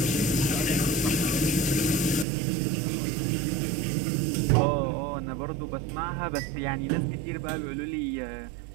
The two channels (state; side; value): drops out; left; at 2.2 s